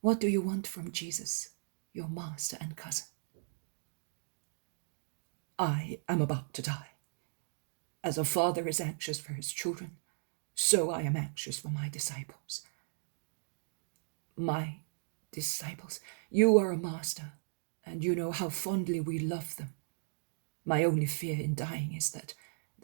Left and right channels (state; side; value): silent; left; digital silence